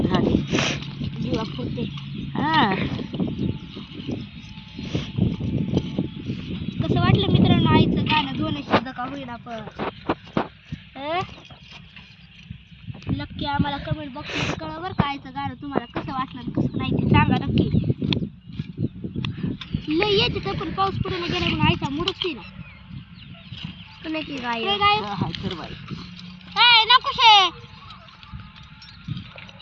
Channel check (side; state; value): both; identical; correlation 1.00